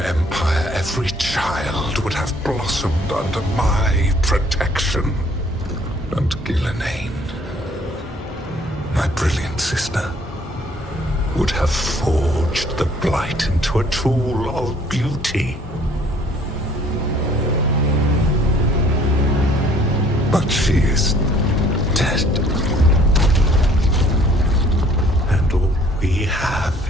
every child would have blossomed under my protection. And Ghilanane, my brilliant sister, would have forged the blight into a tool of beauty. But she is dead. And all we have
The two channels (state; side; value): normal; both; correlation 0.58